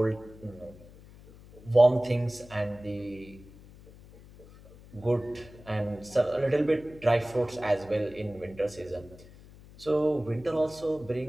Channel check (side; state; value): left; noise; hum, 21 dB below the sound